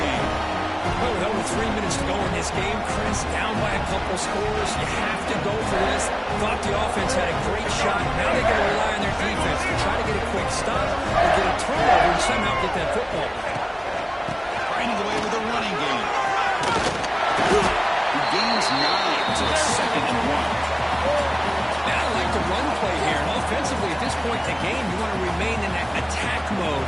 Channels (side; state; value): both; identical; correlation 1.00